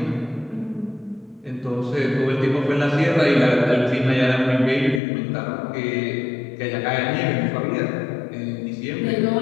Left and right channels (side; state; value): right; drops out; at 5.0 s